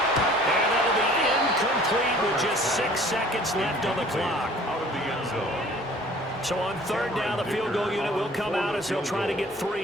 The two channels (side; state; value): both; normal; correlation 0.51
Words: And that'll be incomplete with just 6 seconds left on the clock. Out of the end zone. So on 3rd down, the field goal unit will come out as they'll try to get